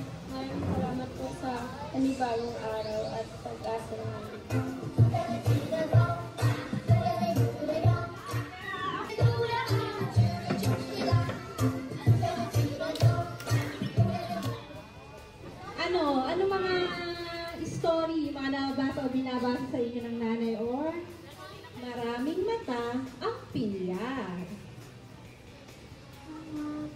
Maraming salamat po sa panibagong araw at pag-asa namin. Ano mga story, mga nabasa o binabasa sa inyo ng nanay or maraming mata ang pinya?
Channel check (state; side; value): identical; both; correlation 1.00